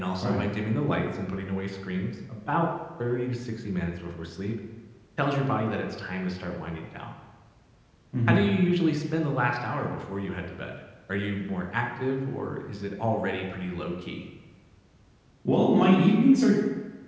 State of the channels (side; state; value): both; identical; correlation 1.00